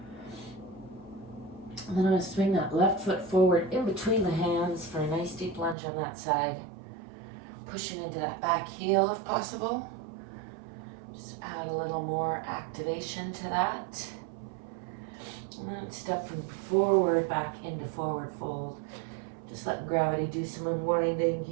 And then I'm going to swing that left foot forward in between the hands for a nice deep lunge on that side. Pushing into that back heel if possible. Just add a little more activation to that. And then step from forward back into forward fold. Just letting gravity do some unwinding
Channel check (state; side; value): drops out; left; at 5.8 s